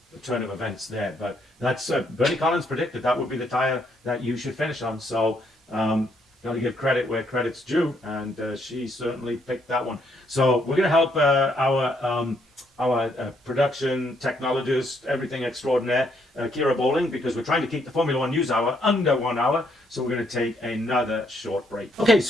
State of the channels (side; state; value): both; normal; correlation 0.72